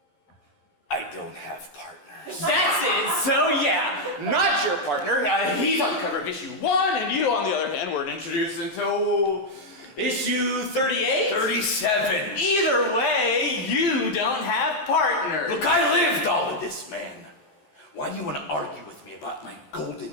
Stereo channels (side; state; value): right; late; 11 ms